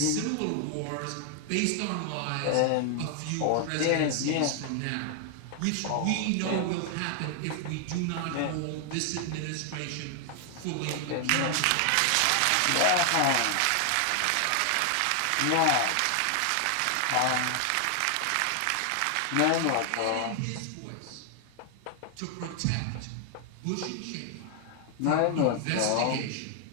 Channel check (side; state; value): both; different; correlation 0.00